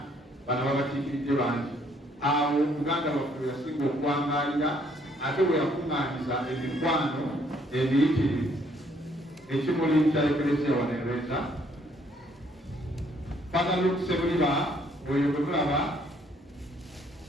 bano babakiikiridde bangi. Awo Buganda baffe yasinga okwangalira ate bwe yakuŋŋaanyiza emikwano emiyitirivu ekimuli kya Ecclesia wanereeza bagala okusebuliba oyo bwe mulaba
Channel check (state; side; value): normal; both; correlation 0.66